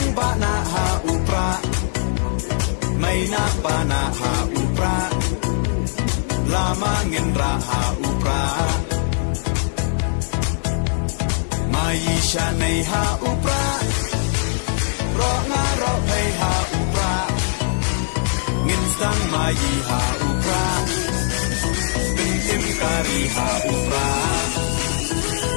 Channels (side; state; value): right; silent; digital silence